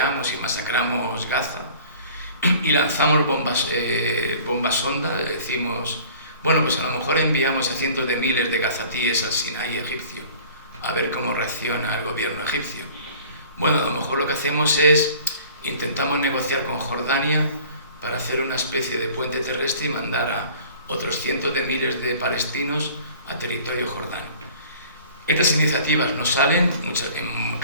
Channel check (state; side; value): inverted; both; correlation -0.48